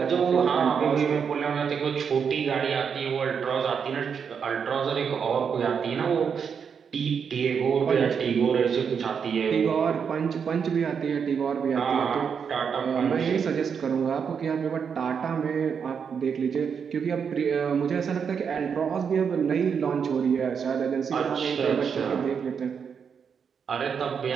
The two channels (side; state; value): left; quieter; 6.7 dB